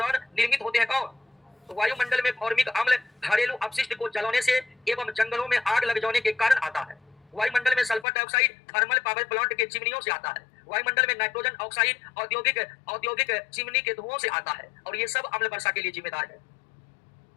निर्मित होते हैं कौन? तो वायुमंडल में फॉर्मिक अम्ल घरेलू अपशिष्ट को जलाने से एवं जंगलों में आग लग जाने के कारण आता है। वायुमंडल में sulphur dioxide thermal power plant के चिमनियों से आता है। वायुमंडल में नाइट्रोजन ऑक्साइड औद्योगिक चिमनी के धुओं से आता है और ये सब अम्ल वर्षा के लिए जिम्मेदार है।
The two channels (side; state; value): right; drops out; at 8.1 s